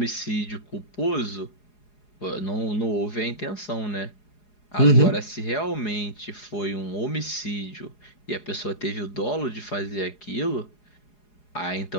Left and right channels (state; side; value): late; right; 4.8 ms